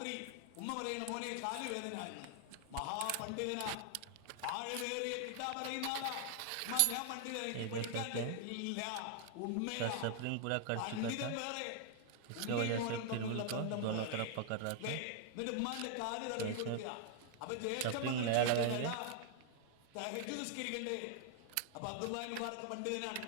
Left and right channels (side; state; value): both; different; correlation 0.00